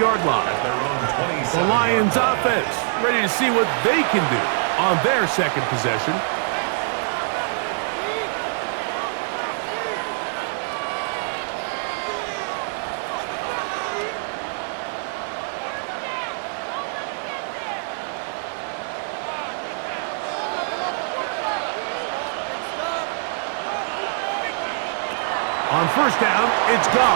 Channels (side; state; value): left; silent; 63 dB below the other